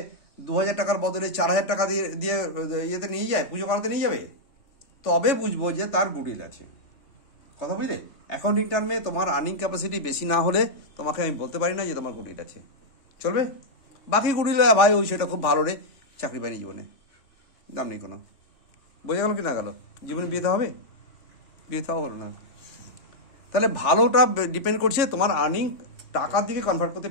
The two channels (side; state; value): right; late; 3.5 ms